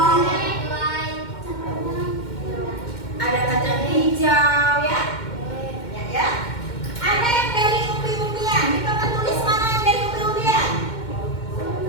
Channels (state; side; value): late; right; 2.1 ms